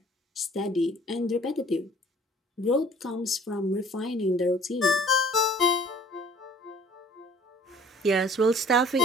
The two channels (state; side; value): normal; both; correlation 0.52